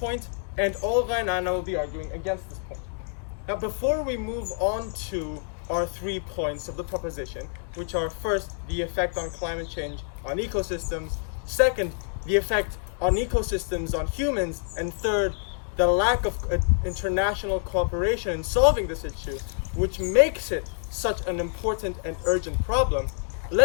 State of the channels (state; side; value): silent; right; 58 dB below the other